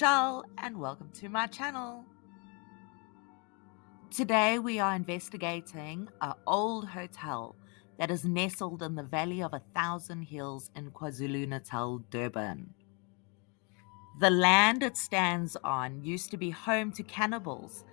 and welcome to my channel. Today we are investigating an old hotel that is nestled in the Valley of 1,000 Hills in KwaZulu-Natal, Durban. The land it stands on used to be home to cannibals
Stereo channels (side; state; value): right; quieter; 33.4 dB